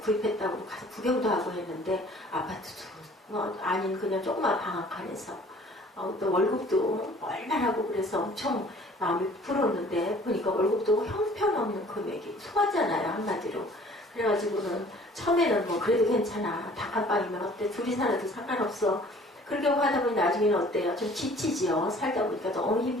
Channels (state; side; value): normal; both; correlation 0.52